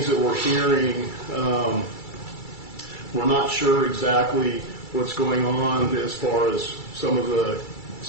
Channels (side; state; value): right; late; 2.3 ms